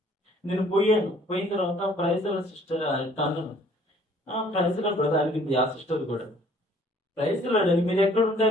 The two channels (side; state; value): both; normal; correlation 0.57